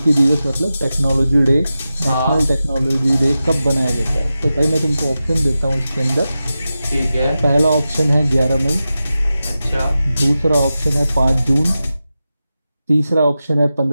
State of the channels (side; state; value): both; inverted; correlation -0.93